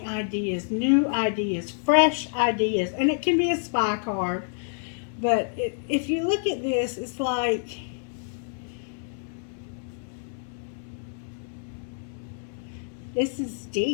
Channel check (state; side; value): silent; right; digital silence